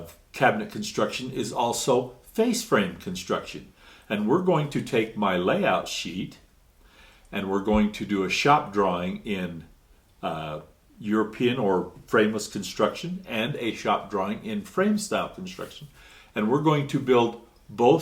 cabinet construction is also face frame construction. And we're going to take my layout sheet and we're going to do a shop drawing in European or frameless construction and a shop drawing in frame style construction. And we're going to build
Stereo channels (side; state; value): both; identical; correlation 1.00